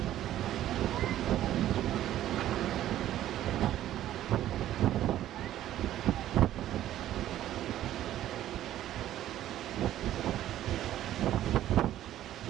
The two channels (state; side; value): quieter; left; 12.8 dB